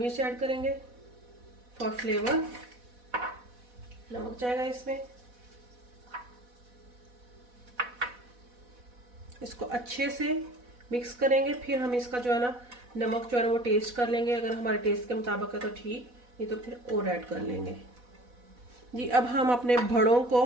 ऐड करेंगे फॉर फ्लेवर। नमक जाएगा इसमें। इसको अच्छे से मिक्स करेंगे। फिर हम इसका जो है ना नमक जो है ना वो टेस्ट कर लेंगे। अगर हमारे टेस्ट के मुताबिक है तो ठीक, नहीं तो फिर और ऐड कर लेंगे। जी अब हम अपने भड़ों को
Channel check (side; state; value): left; late; 4.1 ms